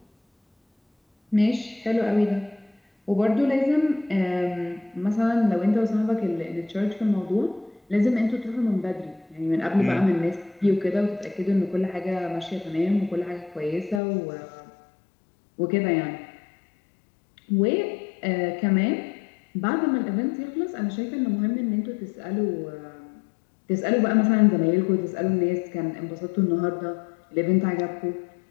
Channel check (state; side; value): drops out; right; at 14.0 s